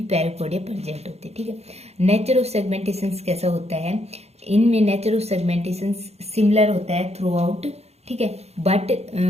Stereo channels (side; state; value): left; late; 0.31 ms